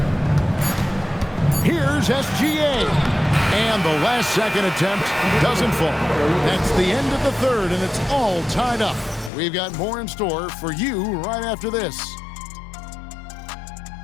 Here's SGA. And the last second attempt doesn't fall. That's the end of the 3rd, and it's all tied up. We've got more in store for you right after this.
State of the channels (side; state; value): right; drops out; at 9.3 s